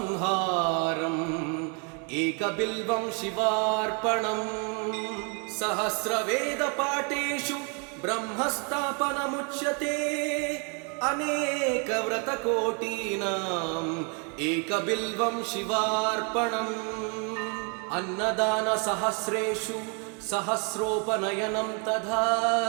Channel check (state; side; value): quieter; left; 36.9 dB